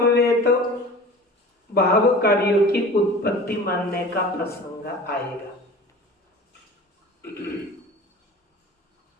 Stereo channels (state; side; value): normal; both; correlation 0.40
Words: भाव कार्यों की उत्पत्ति मानने का प्रसंग आएगा।